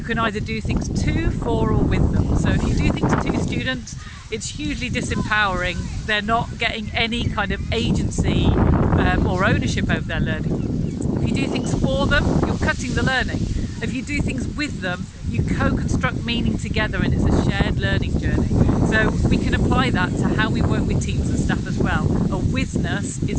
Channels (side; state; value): both; identical; correlation 1.00